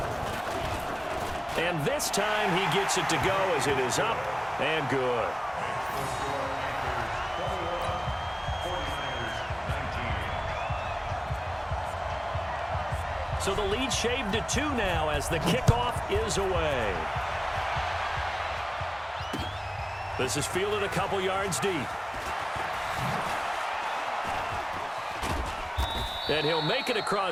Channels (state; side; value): identical; both; correlation 1.00